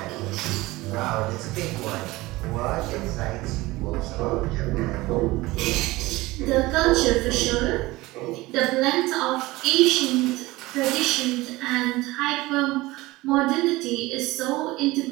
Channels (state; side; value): quieter; left; 19.9 dB